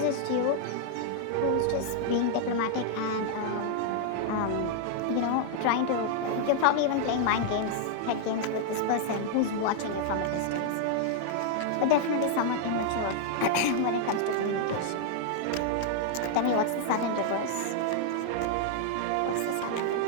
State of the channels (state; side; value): different; both; correlation 0.00